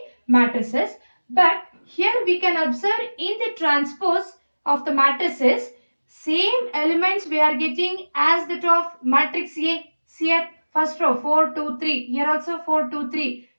matrices. But here we can observe in the transpose of the matrices, same elements we are getting as that of matrix A. Here first row 4, 2, 3. Here also 4, 2, 3.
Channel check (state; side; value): inverted; both; correlation -1.00